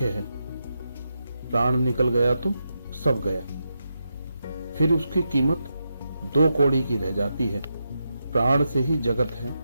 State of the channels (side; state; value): both; inverted; correlation -0.86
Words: है, प्राण निकल गया तो सब गया। फिर उसकी कीमत दो कौड़ी की रह जाती है। प्राण से ही जगत है,